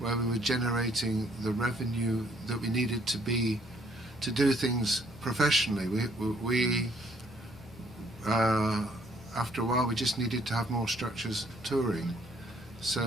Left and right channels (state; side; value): normal; both; correlation 0.64